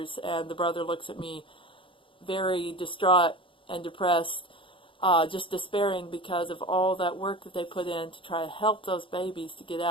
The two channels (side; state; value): right; late; 0.25 ms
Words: and the brother looks at me very distraught and depressed, just despairing because of all that work that they put in to try to help those babies to get